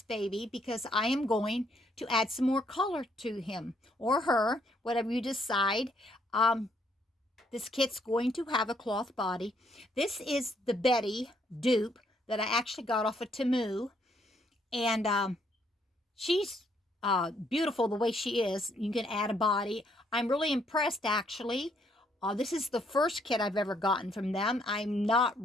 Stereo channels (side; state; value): both; normal; correlation 0.70